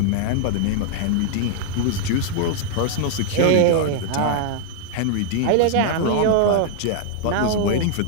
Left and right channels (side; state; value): both; different; correlation 0.00